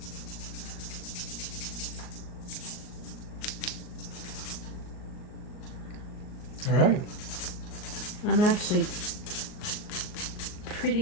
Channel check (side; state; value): right; late; 38 ms